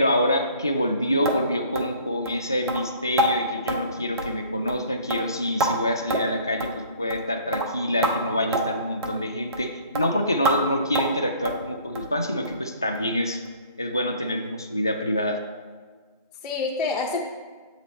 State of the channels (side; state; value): both; inverted; correlation -0.51